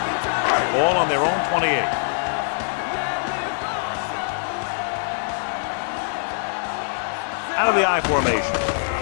Ball on their own 28. Out of the I formation.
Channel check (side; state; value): right; silent; digital silence